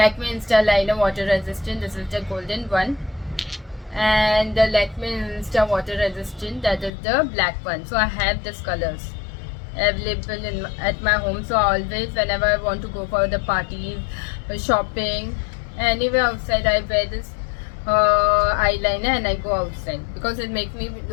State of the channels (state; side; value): drops out; right; at 6.9 s